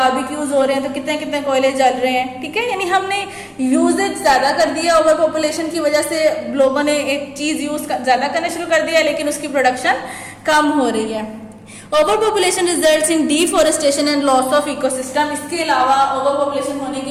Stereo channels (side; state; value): both; identical; correlation 1.00